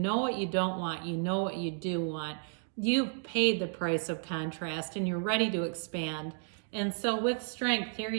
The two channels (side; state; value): left; silent; 56 dB below the other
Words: what you don't want, you know what you do want. You've paid the price of contrast and you're ready to expand. And so with strength, here